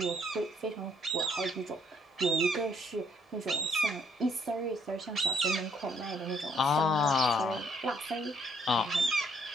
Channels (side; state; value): both; normal; correlation 0.68